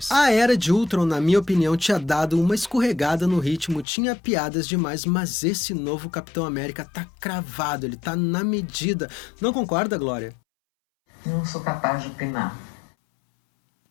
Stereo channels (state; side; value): drops out; right; at 3.9 s